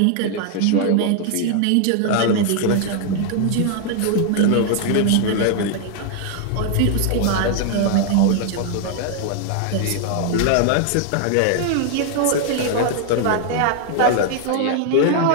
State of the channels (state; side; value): different; both; correlation 0.00